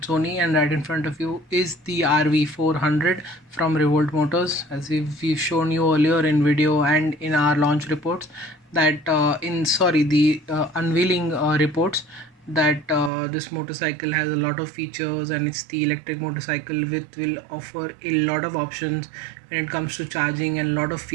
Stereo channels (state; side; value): drops out; left; at 13.1 s